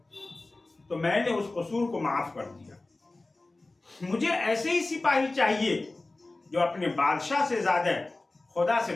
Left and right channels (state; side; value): quieter; right; 3.1 dB